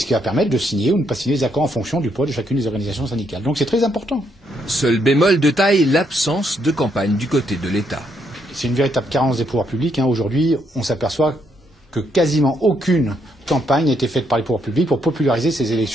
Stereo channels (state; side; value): normal; both; correlation 0.75